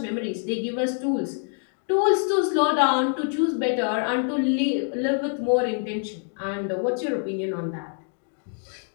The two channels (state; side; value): silent; right; 56 dB below the other